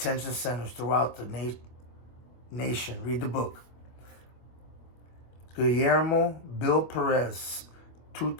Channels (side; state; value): right; late; 25 ms